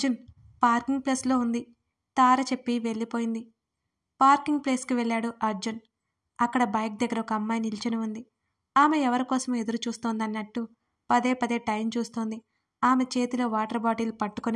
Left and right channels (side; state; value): both; identical; correlation 1.00